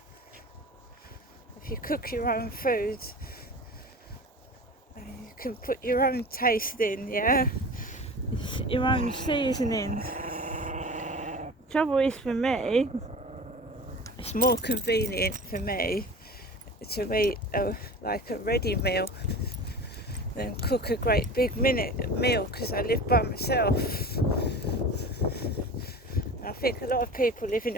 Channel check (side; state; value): both; normal; correlation 0.35